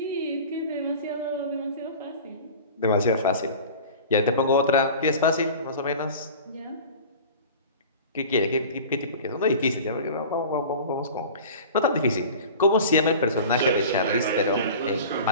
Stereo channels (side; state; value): both; inverted; correlation -0.38